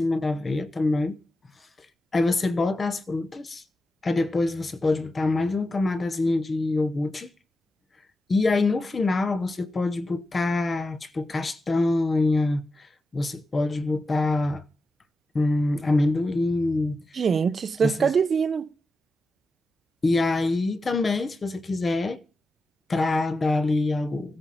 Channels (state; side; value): normal; both; correlation 0.90